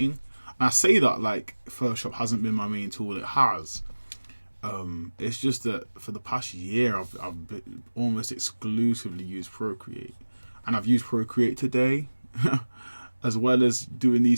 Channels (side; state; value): both; inverted; correlation -1.00